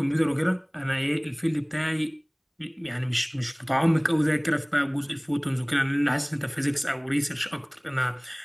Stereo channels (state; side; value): identical; both; correlation 1.00